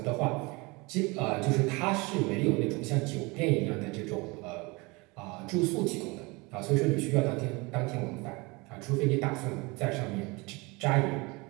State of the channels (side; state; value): left; quieter; 25.8 dB